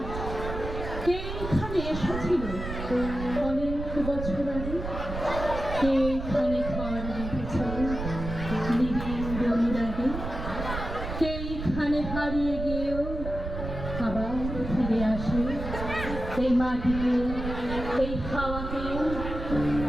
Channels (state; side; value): noise; right; rumble, 6 dB below the sound